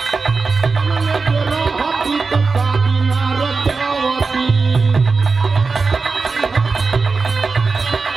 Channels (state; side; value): quieter; left; 4.4 dB